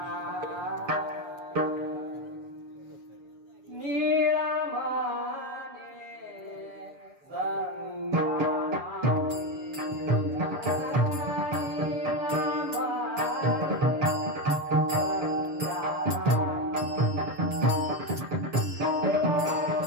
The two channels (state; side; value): late; left; 7.0 ms